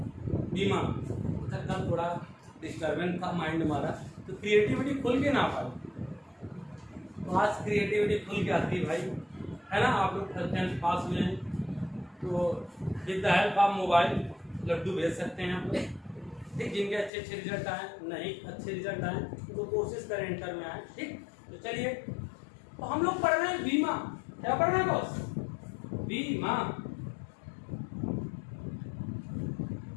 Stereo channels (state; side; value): drops out; right; at 17.1 s